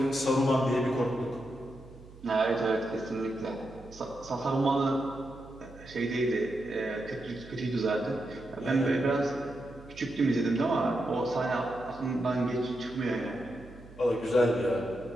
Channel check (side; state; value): right; noise; hum, 19 dB below the sound